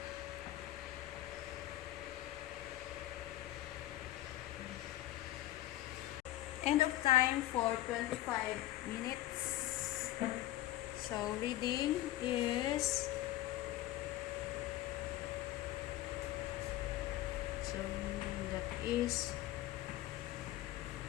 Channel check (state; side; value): quieter; right; 15.3 dB